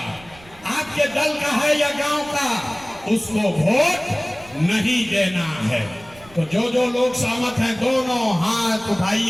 आपके दल का है या गांव का, उसको वोट नहीं देना है। तो जो लोग सहमत हैं दोनों हाथ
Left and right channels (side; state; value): right; noise; rumble, 24 dB below the sound